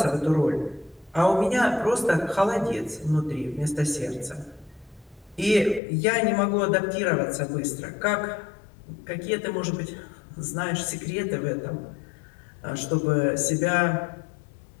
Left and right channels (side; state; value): right; drops out; at 5.8 s